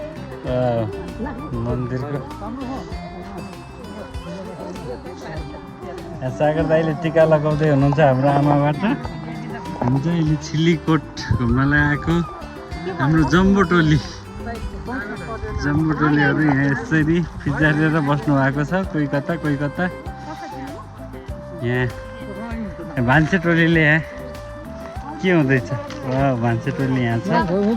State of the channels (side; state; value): both; identical; correlation 1.00